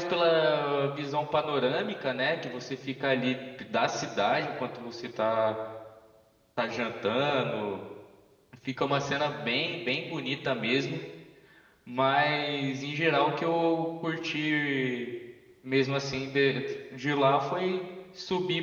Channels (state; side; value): identical; both; correlation 1.00